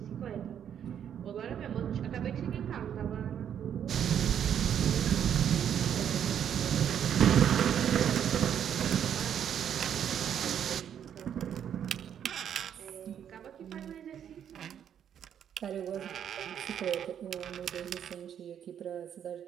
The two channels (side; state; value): left; quieter; 9.1 dB